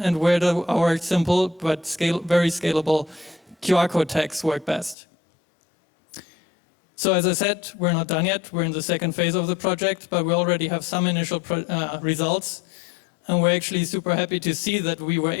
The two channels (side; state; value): right; drops out; at 5.0 s